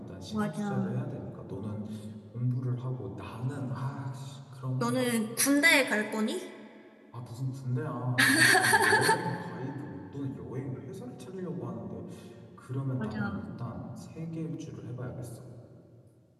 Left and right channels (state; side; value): identical; both; correlation 1.00